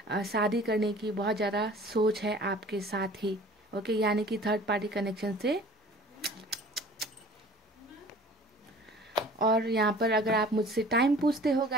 शादी करने की बहुत ज़्यादा सोच है आपके साथ ही। ओके, यानी कि थर्ड पार्टी कनेक्शन से। और यहाँ पर अगर आप मुझसे टाइम पूछते हो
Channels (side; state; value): both; normal; correlation 0.47